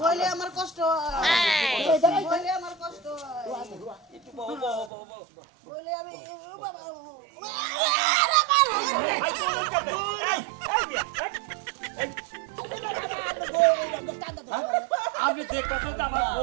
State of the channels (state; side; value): drops out; left; at 4.9 s